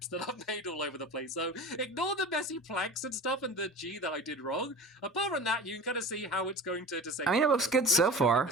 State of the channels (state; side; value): normal; both; correlation 0.35